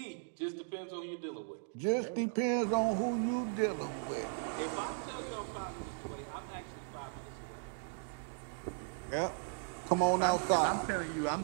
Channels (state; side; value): silent; left; digital silence